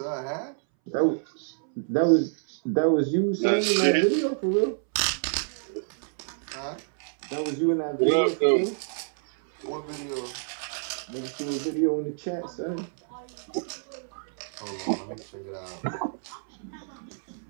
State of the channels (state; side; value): silent; left; 60 dB below the other